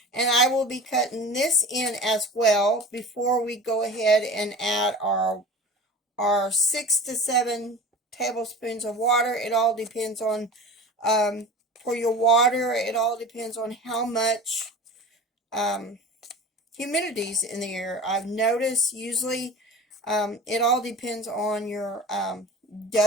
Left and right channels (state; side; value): normal; both; correlation 0.36